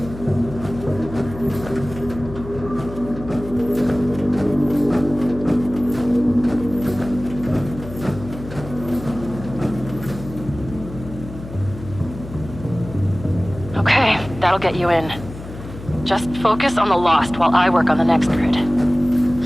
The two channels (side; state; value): left; noise; hum, 13 dB below the sound